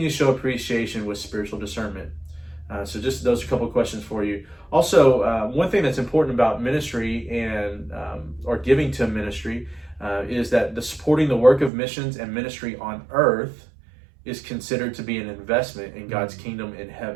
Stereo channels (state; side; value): drops out; left; at 11.7 s